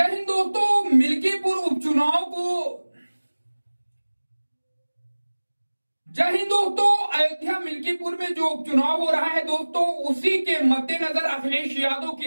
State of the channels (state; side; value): inverted; both; correlation -1.00